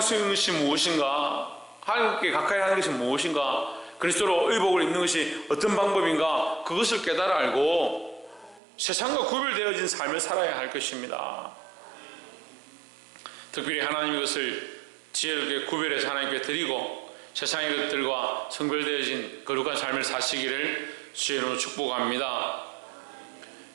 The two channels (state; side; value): drops out; left; at 8.6 s